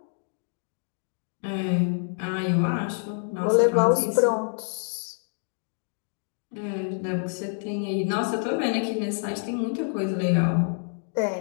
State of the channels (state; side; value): silent; right; 60 dB below the other